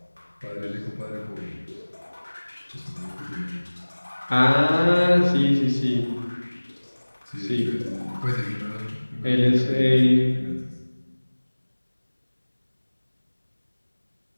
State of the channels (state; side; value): inverted; both; correlation -1.00